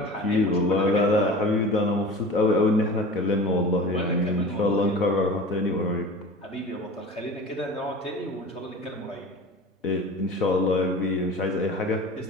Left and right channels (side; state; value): both; normal; correlation 0.36